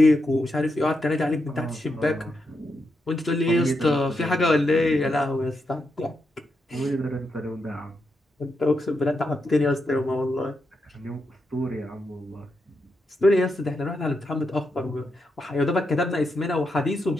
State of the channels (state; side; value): normal; both; correlation 0.84